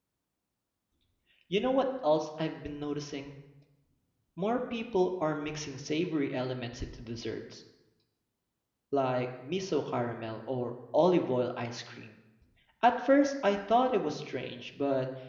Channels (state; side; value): identical; both; correlation 1.00